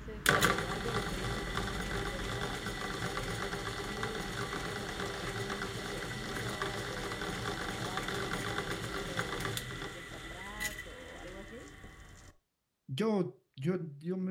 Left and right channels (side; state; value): both; identical; correlation 1.00